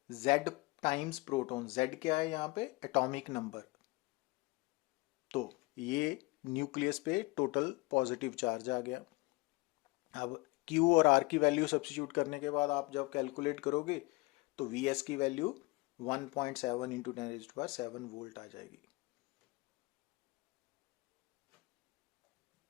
Z टाइम्स प्रोटॉन। Z क्या है यहाँ पे, एटॉमिक नंबर। तो ये न्यूक्लियस पे टोटल पॉजिटिव चार्ज आ गया। अब Q और R की वैल्यू सब्स्टिट्यूट करने के बाद आप जब कैलकुलेट करोगे तो Vs की वैल्यू 1.7 into 10⁻7 वोल्ट आ जाएगी।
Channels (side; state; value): right; quieter; 24.2 dB